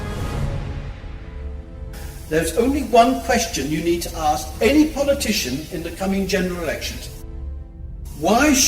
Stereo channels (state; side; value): identical; both; correlation 1.00